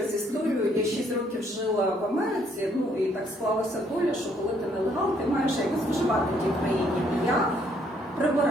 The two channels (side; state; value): both; normal; correlation 0.67